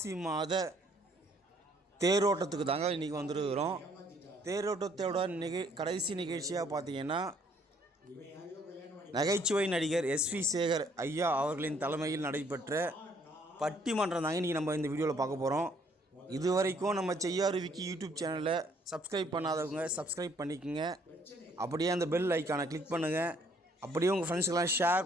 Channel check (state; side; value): normal; both; correlation 0.64